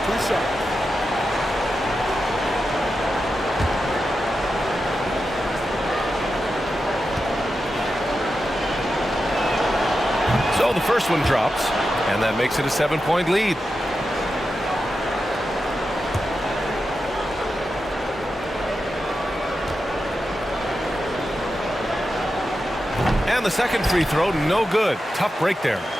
2 shots. So the first one drops, and that makes it a 7-point lead. And the second free throw, no good. Tough break there.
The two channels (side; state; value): both; normal; correlation 0.90